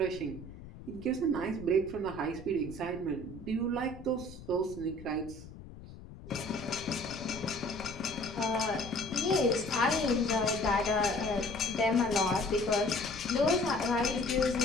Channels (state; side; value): noise; left; rumble, 15 dB below the sound